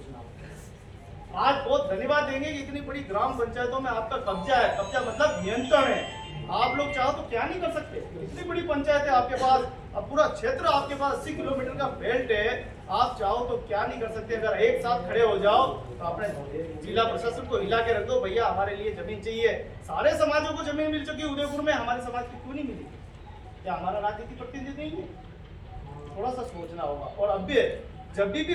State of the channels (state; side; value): identical; both; correlation 1.00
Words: होगा। आज बहुत धन्यवाद देंगे कि इतनी बड़ी ग्राम पंचायतों में आपका कब्जा है, कब्जा मतलब नियंत्रण है। आप लोग चाहो तो क्या नहीं कर सकते, इतनी बड़ी पंचायत है आपके पास, अब पूरा क्षेत्र आपके पास 80 किलोमीटर का बेल्ट है, आप चाहो तो क्या नहीं कर सकते। अगर एक साथ खड़े हो जाओ तो अपने जिला प्रशासन को हिला के रख दो, भैया हमारे लिए जमीन चाहिए। सारे समाजों को जमीन मिल चुकी है, उदयपुर में हमारे समाज की क्यों नहीं मिली? क्या हमारा राजनीतिक प्रतिनिधि नहीं है? थोड़ा सा सोचना होगा। और अब भी जब भी